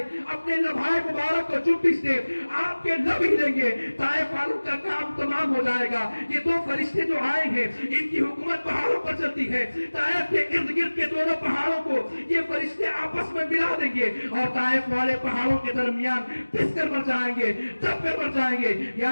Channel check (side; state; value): both; inverted; correlation -1.00